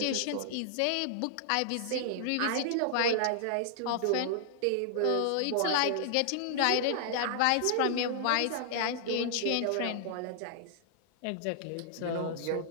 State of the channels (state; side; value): different; both; correlation -0.01